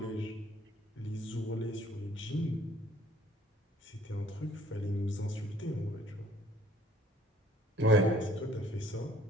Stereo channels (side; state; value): both; normal; correlation 0.57